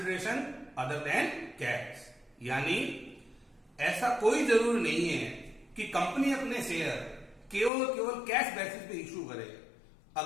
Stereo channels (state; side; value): drops out; right; at 7.7 s